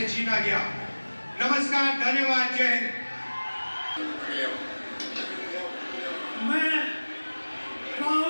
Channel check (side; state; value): both; inverted; correlation -1.00